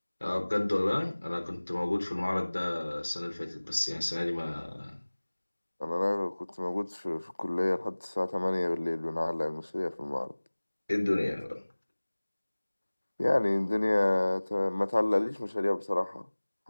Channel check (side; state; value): both; inverted; correlation -1.00